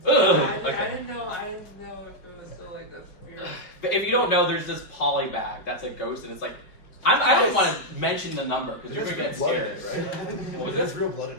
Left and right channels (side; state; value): right; late; 5.2 ms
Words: I didn't know if it was still like this. But if you don't know, there's this poly bag that's a ghost, and it's like, I don't want to mention the number because you're gonna get scared. What was There's it? real blood in